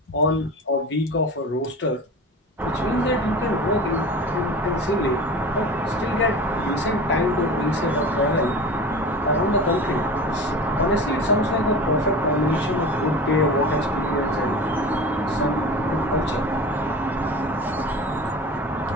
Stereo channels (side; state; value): both; normal; correlation 0.34